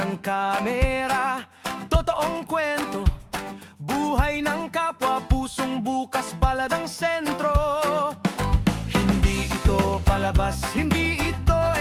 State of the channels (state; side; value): identical; both; correlation 1.00